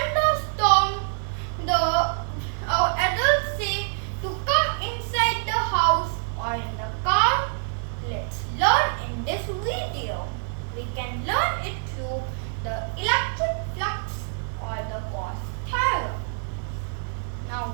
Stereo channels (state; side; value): silent; left; digital silence